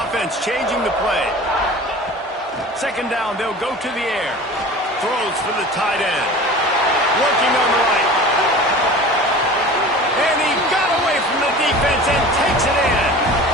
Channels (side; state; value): both; normal; correlation 0.38